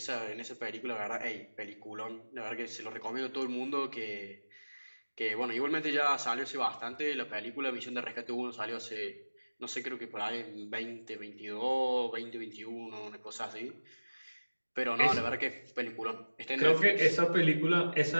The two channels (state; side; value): inverted; both; correlation -1.00